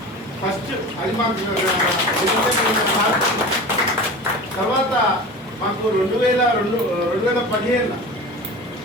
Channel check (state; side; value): normal; both; correlation 0.33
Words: ఫస్ట్ అది మాకు. తర్వాత మాకు 2015